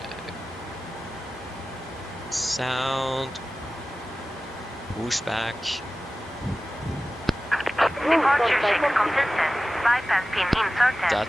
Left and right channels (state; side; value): normal; both; correlation 0.96